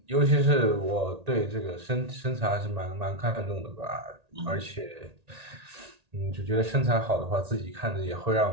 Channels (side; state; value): left; late; 1.8 ms